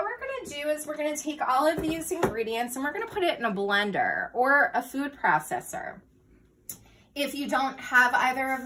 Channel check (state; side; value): identical; both; correlation 1.00